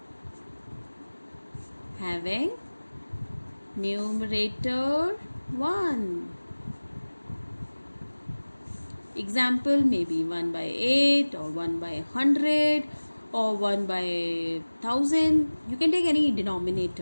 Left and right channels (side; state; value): both; inverted; correlation -1.00